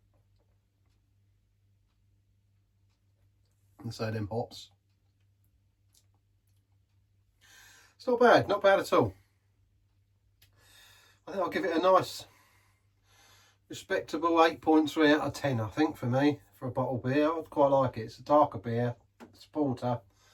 And so them hops. It's not bad at all. I think I'll give it a nice respectable 8.3 out of 10, I think, for me, for a bottle beer. I'd quite like it. It's a darker beer, it's porter.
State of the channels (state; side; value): identical; both; correlation 1.00